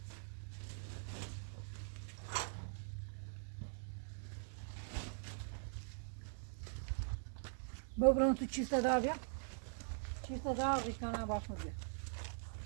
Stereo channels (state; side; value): silent; left; digital silence